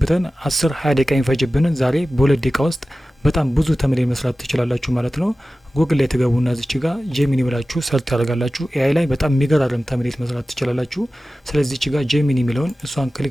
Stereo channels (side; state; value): both; normal; correlation 0.96